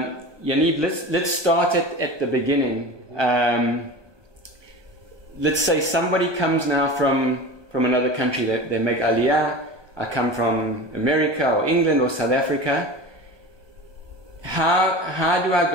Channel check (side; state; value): left; late; 1.2 ms